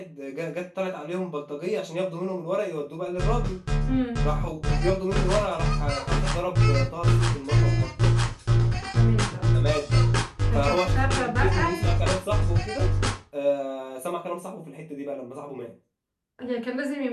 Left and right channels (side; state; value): both; identical; correlation 1.00